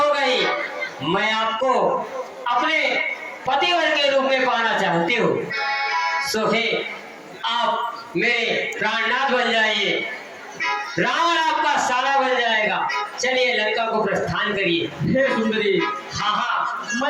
गई। मैं आपको अपने पतिवर के रूप में पाना चाहती हूँ। सो हे आप मेरे प्राणनाथ बन जाइए, रावण आपका साला बन जाएगा। चलिए लंका को प्रस्थान करिए। हे सुंदरी, हाँ हाँ,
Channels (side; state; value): both; identical; correlation 1.00